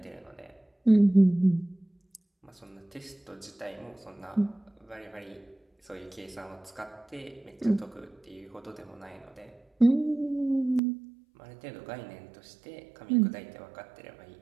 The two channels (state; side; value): drops out; left; at 10.8 s